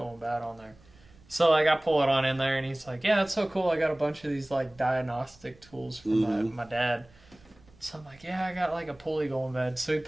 bad on there. So like I pull it on in there, and he's like, "Yeah, it's so cool. I got a bunch of these like diagnostic tools from my dad." So I'm like, "Yeah, I got like a pulley going bad." So he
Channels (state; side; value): noise; right; rumble, 27 dB below the sound